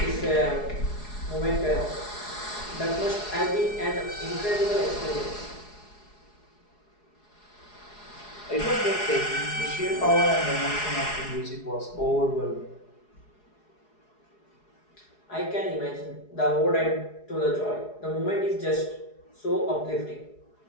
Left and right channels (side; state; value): right; late; 4.8 ms